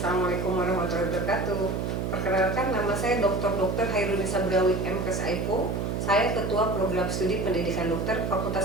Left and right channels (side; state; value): right; noise; hum, 1 dB below the sound